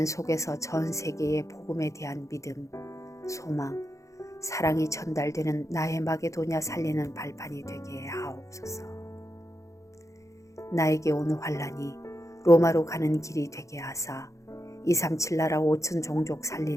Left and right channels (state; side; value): late; right; 0.15 ms